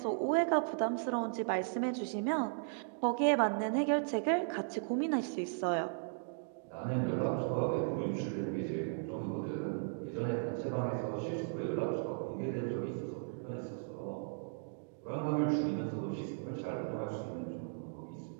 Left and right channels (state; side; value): silent; left; digital silence